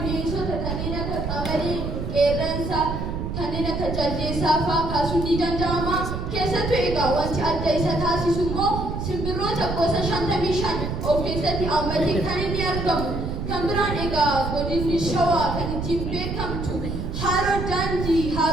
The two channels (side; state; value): right; noise; rumble, 4 dB below the sound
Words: kanneen akka qabne, qeerransa, kanneen akka jaldeessaa fa'aa kaasuun ni danda'ama. Keessattuu egaa wanti adda isa taasisu immoo simbirroota gosa 55 of keessatti hammatee kan inni argamu. Kan biraan egaa godinni shawaa kan ittiin beekamtu haroo daandii,